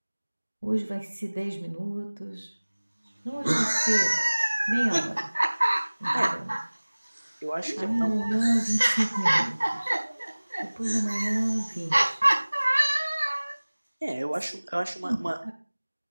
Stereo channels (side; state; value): both; inverted; correlation -1.00